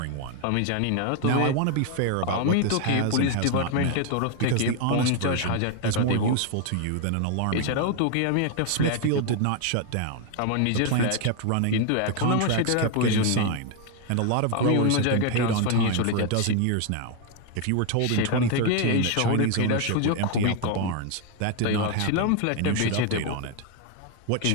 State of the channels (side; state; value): both; different; correlation 0.01